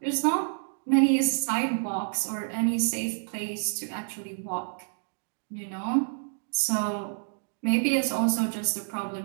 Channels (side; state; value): left; silent; digital silence